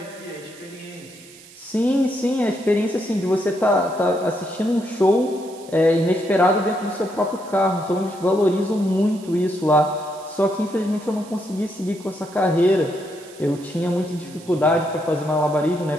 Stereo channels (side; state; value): right; noise; hiss, 21 dB below the sound